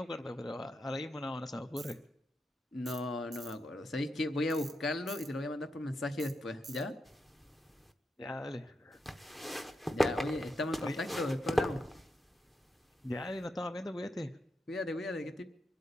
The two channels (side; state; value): both; normal; correlation 0.85